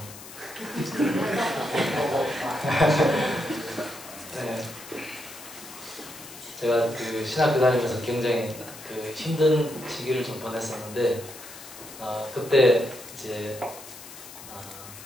네. 제가 그 신학교 다니면서 굉장히 그 힘든 시기를 좀 보냈었는데 그때 이제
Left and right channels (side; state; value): left; noise; hiss, 15 dB below the sound